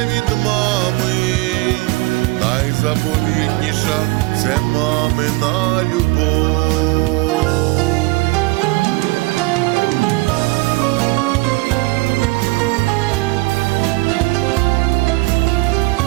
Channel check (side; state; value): left; quieter; 23.2 dB